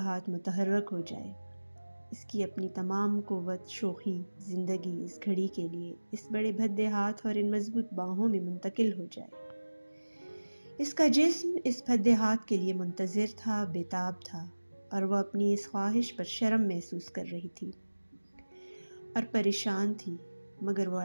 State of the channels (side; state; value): both; inverted; correlation -1.00